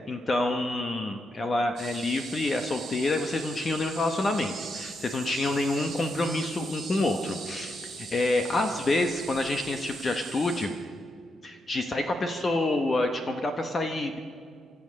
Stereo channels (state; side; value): normal; both; correlation 0.83